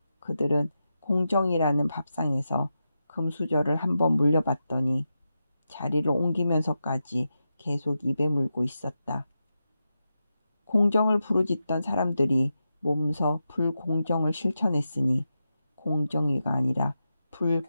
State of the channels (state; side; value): inverted; both; correlation -0.89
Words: 그들은 공정이라는 밥상에서 금수저를 한번 물려봤더니 자리를 옮기면서까지 계속 입에 물고 있었다. 공정을 부르짖던 사람들이 몸소 불공정을 실천했으니 공정위가 아니라